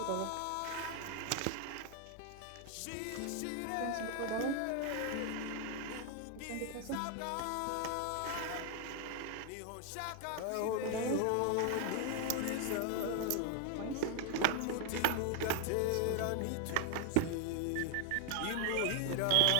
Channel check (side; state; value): both; different; correlation 0.00